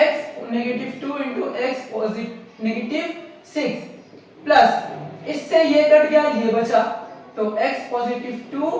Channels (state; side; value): identical; both; correlation 1.00